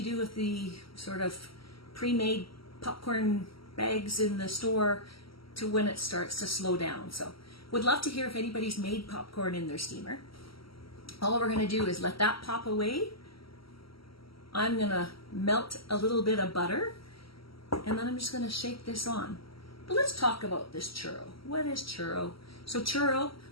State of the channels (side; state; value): right; late; 0.75 ms